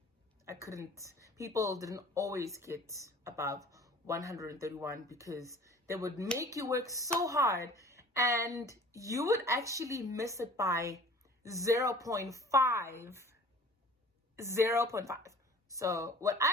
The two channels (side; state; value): both; normal; correlation 0.48